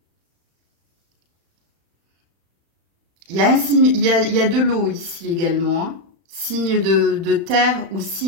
Il y a un signe, il y a de l'eau ici également. Hein. Signe de terre ou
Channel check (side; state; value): left; late; 35 ms